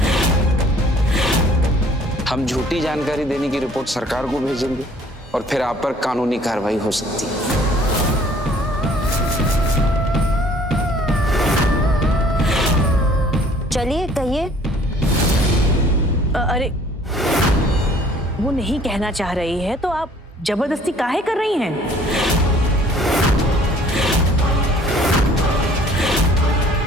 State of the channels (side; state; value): both; normal; correlation 0.56